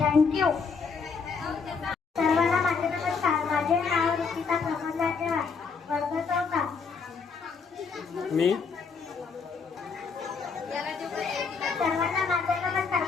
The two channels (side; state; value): right; quieter; 5.2 dB